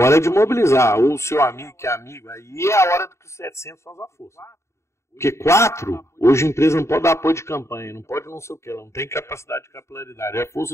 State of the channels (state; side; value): late; right; 0.13 ms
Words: é de mobilizar. Ou o seu amigo que é amigo. Aí é a hora que os 700 faz a força. Porque 4, hoje a empresa não pode dar apoio de campanha, não pode não sei o que, ela não tem capacidade de capilaridade. A